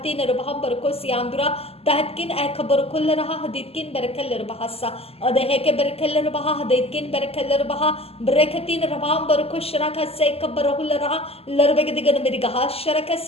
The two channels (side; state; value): right; late; 0.29 ms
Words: रबहम बरको सियांदुरा दहतकिन ehkabar कुल रहा हदेतकिन बरकलर बहा सा अदहे के बरकलर बहा हदेतकिन बरकलर बहा बरकतीन रबहम बरको शरका से खबर हो रहा लरबेगदिगन मेरी गहा